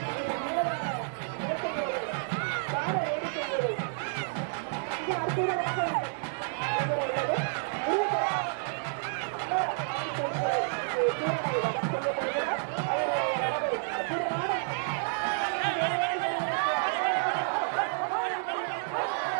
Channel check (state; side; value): silent; left; digital silence